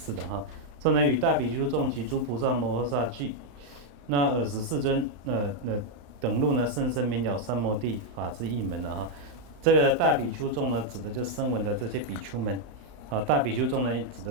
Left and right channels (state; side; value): late; left; 35 ms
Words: 的哈。这呢与大比丘众及诸菩萨摩诃萨俱，那尔时世尊等入呢甚深明了三摩地法之一门了哈。这个大比丘众呢，指的就是声闻的这些比丘们，啊，大比丘众呢，指